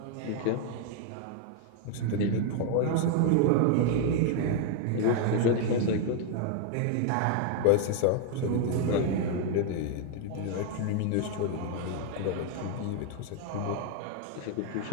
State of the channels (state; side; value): different; both; correlation 0.00